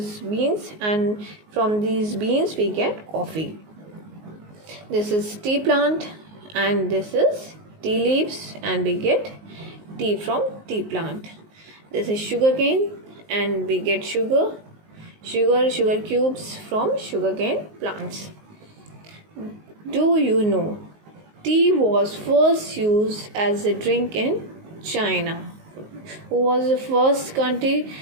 beans, and from these beans we get coffee. This is tea plant, and this is tea leaves, and we get tea from tea plant. This is sugar cane, and we get sugar cubes from sugarcane plants. Do you know tea was first used as a drink in China? Who was the first country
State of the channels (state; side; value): late; left; 19 ms